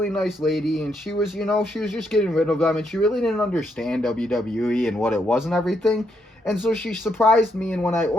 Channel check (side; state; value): both; normal; correlation 0.77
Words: nice lady, and she was, she was just getting rid of them, and she really didn't understand WWE and what it was and everything. And so she surprised me, and when I